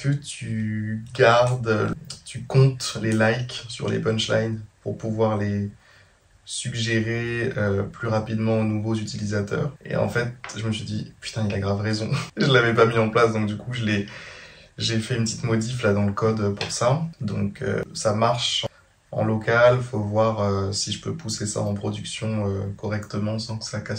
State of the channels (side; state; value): both; identical; correlation 1.00